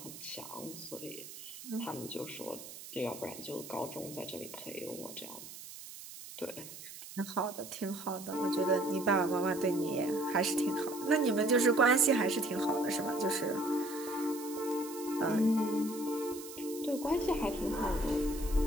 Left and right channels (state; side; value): noise; right; hiss, 13 dB below the sound